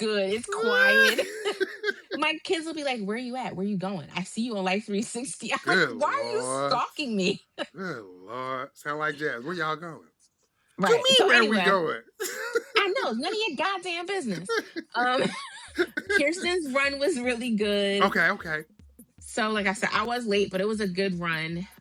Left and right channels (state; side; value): identical; both; correlation 1.00